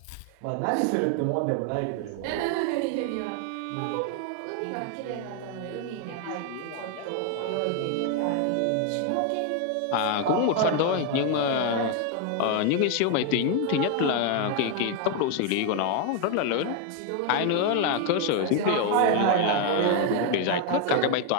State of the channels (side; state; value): both; different; correlation 0.01